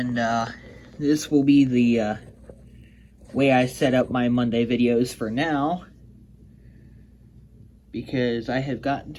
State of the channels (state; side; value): identical; both; correlation 1.00